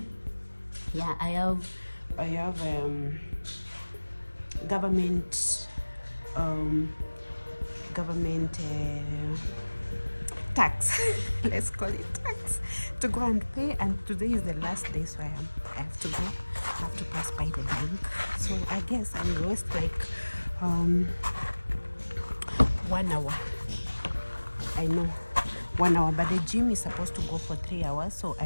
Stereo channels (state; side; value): inverted; both; correlation -1.00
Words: Yeah, I have government tax. Let's call it tax to go and pay. And today is the last day, so I have to go. I have to pass by the bank. So I guess I will waste like 1 hour. I know 1 hour, but the gym is supposed to go for 3 hours, so